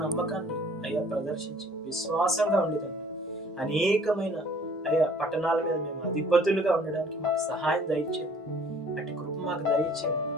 నమ్మకాన్ని అయ్యా ప్రదర్శించి విశ్వాసంగా ఉండేదండి అనేకమైన అయ్యా పట్టణాల మీద మేము అధిపతులుగా ఉండడానికి మాకు సహాయం దయచేయండి. అటు కృప మాకు దయచేయండి.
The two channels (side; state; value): both; normal; correlation 0.55